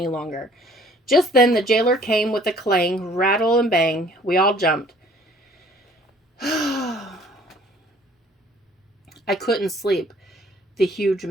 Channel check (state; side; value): normal; both; correlation 0.56